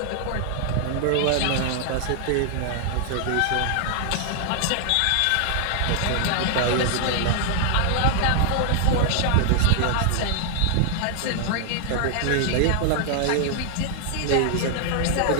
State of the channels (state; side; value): different; both; correlation 0.00